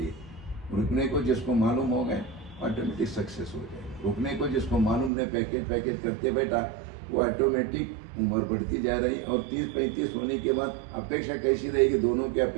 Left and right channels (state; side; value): drops out; left; at 5.1 s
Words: रुकने को जिसको मालूम हो गए ऑटोमेटिक सक्सेस हो जाएगा। रुकने को जिसको मालूम नहीं, पैकेज करते बैठा, वो ऑटोमेटिक उम्र बढ़ती जा रही। और 30-35 होने के बाद अपेक्षा कैसी रहेगी, दोनों की